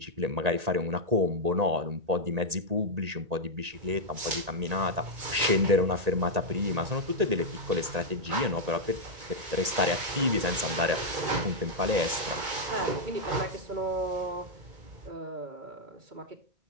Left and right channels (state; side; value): late; left; 1.8 ms